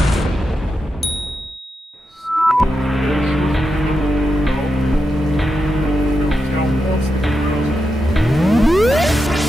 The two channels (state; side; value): normal; both; correlation 0.87